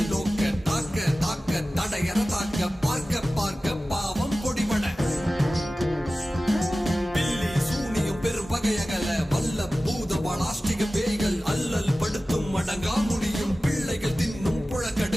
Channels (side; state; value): both; normal; correlation 0.96